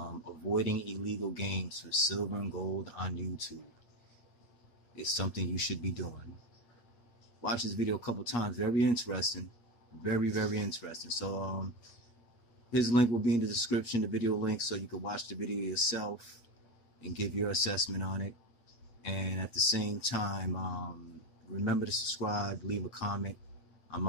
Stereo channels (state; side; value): late; right; 8.4 ms